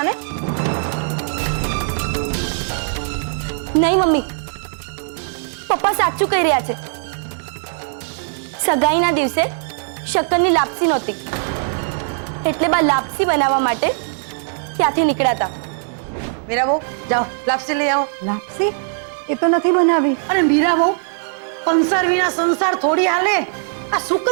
ને? નહીં મમ્મી, પપ્પા સાચું કહી રહ્યા છે. સગાઈના દિવસે શક્કરની લાપસી નહોતી એટલે બા લાપસી બનાવવા માટે ત્યાંથી નીકળ્યા હતા. મીરા બહુ, જાઓ લાપસી લઈ આવો. લાપસી? એ તો નથી બનાવી. અને મીરા બહુ, કંસાર વિના સંસાર થોડી હાલે. આ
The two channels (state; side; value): silent; left; 65 dB below the other